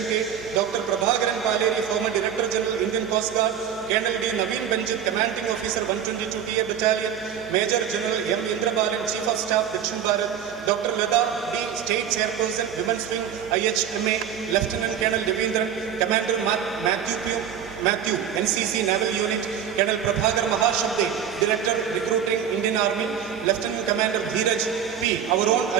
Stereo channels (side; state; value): left; quieter; 8.6 dB